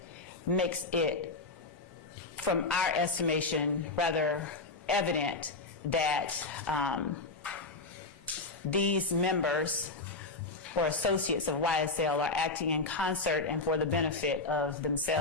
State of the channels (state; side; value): quieter; right; 3.5 dB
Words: makes it, from our estimation, rather evident that these members or associates of YSL are acting in concert and for the benefit of